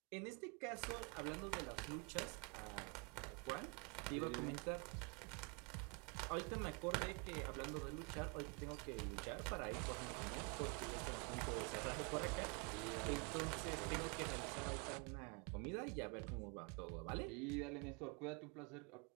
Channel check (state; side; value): quieter; left; 32.8 dB